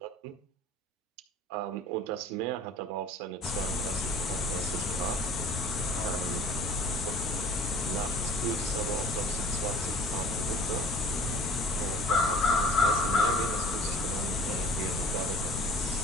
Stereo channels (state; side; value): normal; both; correlation 0.48